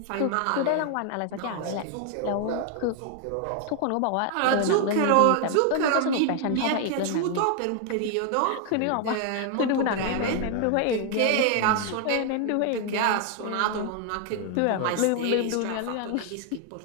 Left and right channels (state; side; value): different; both; correlation 0.00